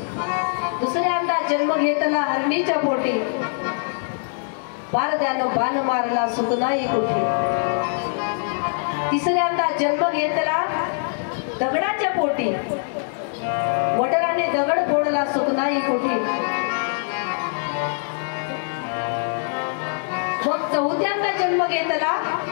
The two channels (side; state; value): right; silent; digital silence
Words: दुसऱ्यांदा जन्म घेतला हरणीच्या पोटी, बारद्यानं बाण मारला सुख नाही कोठी. तिसऱ्यांदा जन्म घेतला दगडाच्या पोटी, वडिलाने दगड फोडला सुख नाही कोठी. मग चौथ्यांदा जन्म घेतला